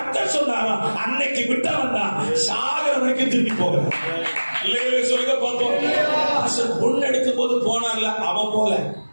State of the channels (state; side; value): inverted; both; correlation -1.00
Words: சொன்னாரோ அன்னைக்கு விட்டவன் தான் சாகர வரைக்கும் திரும்பி போகிறான். சொல்லுங்க பார்ப்போம். பொண்ணு எடுக்கும் போது போனான்ல அவன் போல,